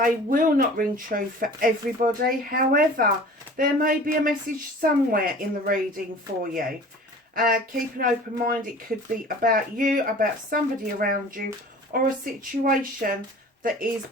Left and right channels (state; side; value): normal; both; correlation 0.43